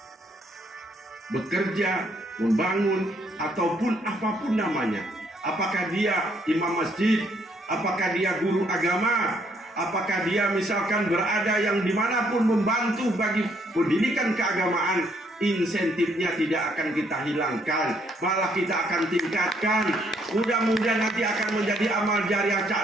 bekerja, membangun, ataupun apapun namanya. Apakah dia imam masjid, apakah dia guru agama, apakah dia misalkan berada yang dimanapun membantu bagi pendidikan keagamaan, insentifnya tidak akan kita hilangkan, malah kita akan tingkatkan. Mudah-mudahan nanti akan menjadi amal jariah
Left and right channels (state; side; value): normal; both; correlation 0.69